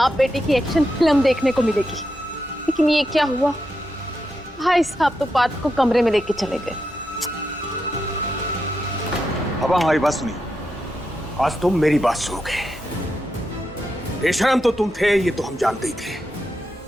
बेटे की एक्शन फिल्म देखने को मिलेगी, लेकिन ये क्या हुआ? भाई साहब तो पार्थ को कमरे में लेके चले गए। पापा हमारी बात सुनिए, आज तुम मेरी बात सुनोगे। बेशरम तो तुम थे, ये तो हम जानते ही थे,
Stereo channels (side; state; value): both; normal; correlation 0.86